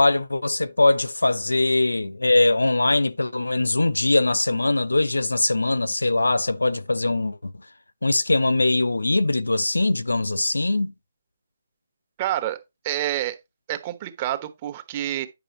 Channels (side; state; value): both; inverted; correlation -0.94